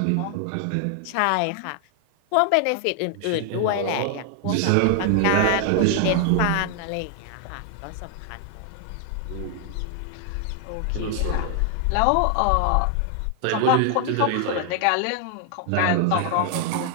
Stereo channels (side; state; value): both; different; correlation 0.00